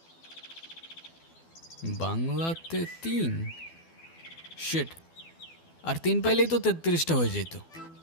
বাংলাতে 3 শিট, আর 3 পাইলেই তো 33টা হয়ে যেত।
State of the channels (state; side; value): late; right; 12 ms